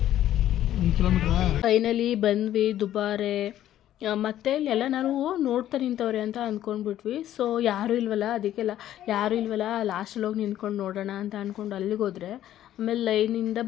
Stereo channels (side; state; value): right; quieter; 12.3 dB